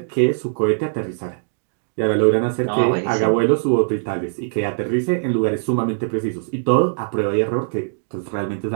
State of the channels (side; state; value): left; silent; digital silence